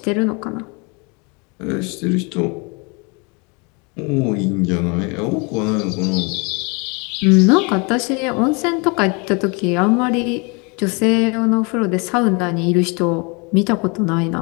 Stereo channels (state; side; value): quieter; right; 31.2 dB